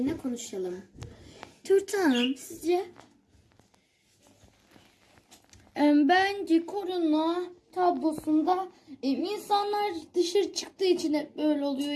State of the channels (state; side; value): identical; both; correlation 1.00